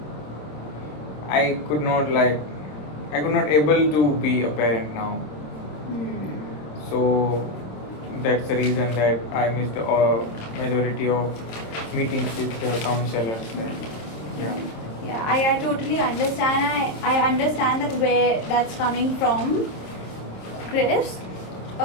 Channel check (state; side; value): late; right; 27 ms